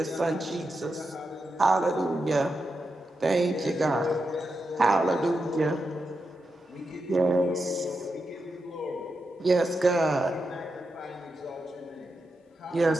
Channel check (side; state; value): both; normal; correlation 0.87